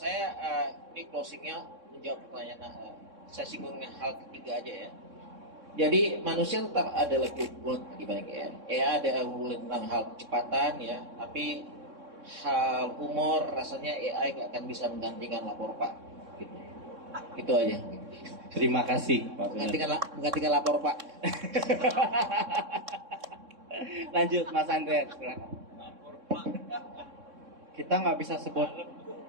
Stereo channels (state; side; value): late; left; 3.6 ms